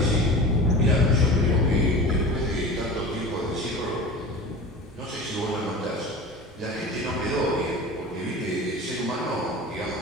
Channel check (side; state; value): both; normal; correlation 0.35